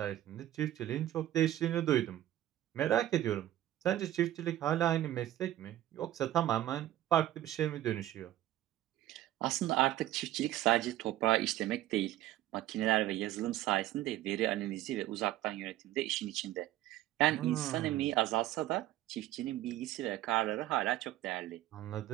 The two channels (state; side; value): quieter; left; 13.9 dB